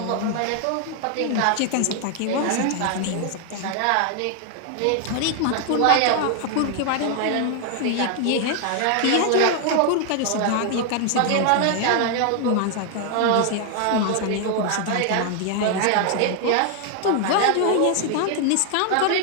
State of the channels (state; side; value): different; both; correlation 0.00